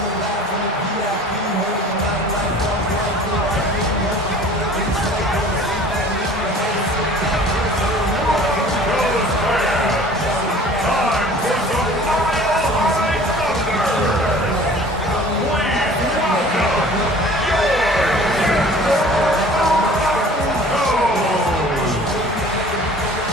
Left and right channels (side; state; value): both; normal; correlation 0.47